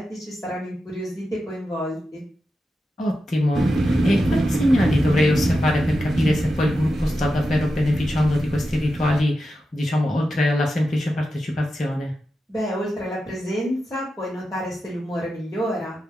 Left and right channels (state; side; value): normal; both; correlation 0.90